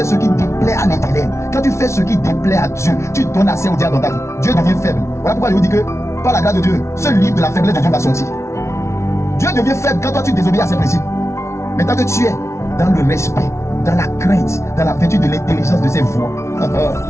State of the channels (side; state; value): right; late; 0.13 ms